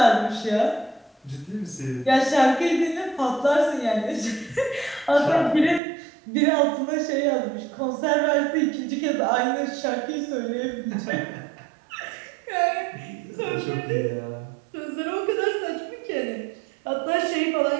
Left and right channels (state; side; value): drops out; left; at 5.8 s